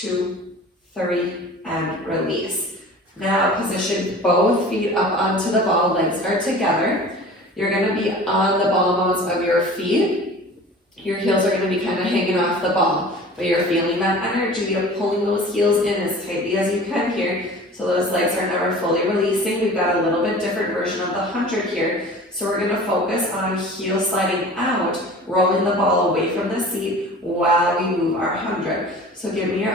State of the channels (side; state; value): both; normal; correlation 0.41